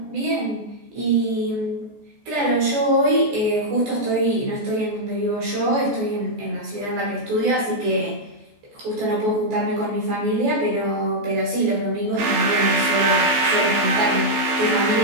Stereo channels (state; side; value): late; left; 14 ms